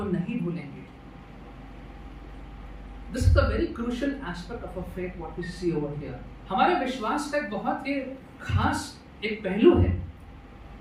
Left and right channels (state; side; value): identical; both; correlation 1.00